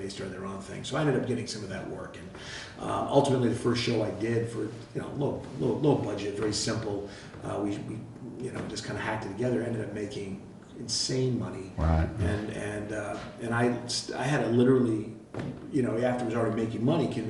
started their own thing. So I ended up getting some of that work, and ultimately the first show I did for low budget, very simple. We just kind of hacked it together. Ended up making insane money, and I had to literally, after I was already making money,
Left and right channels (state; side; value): identical; both; correlation 1.00